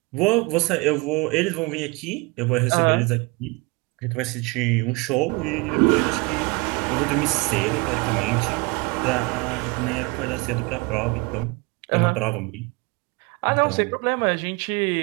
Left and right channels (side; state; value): left; quieter; 26.3 dB